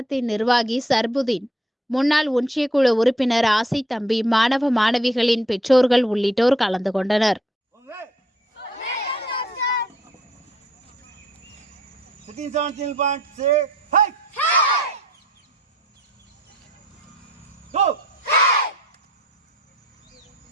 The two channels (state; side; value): normal; both; correlation 0.60